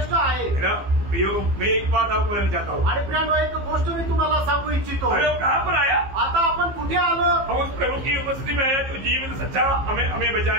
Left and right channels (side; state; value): left; late; 15 ms